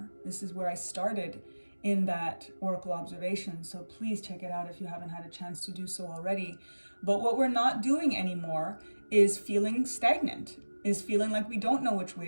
This is where I started in that oracle observation, so please check it out if you haven't had a chance to do so already. But what we're not doing anymore is feeling stagnant, is feeling like we don't know which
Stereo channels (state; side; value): inverted; both; correlation -1.00